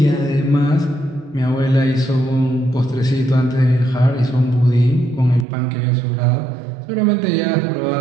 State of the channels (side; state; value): left; drops out; at 5.5 s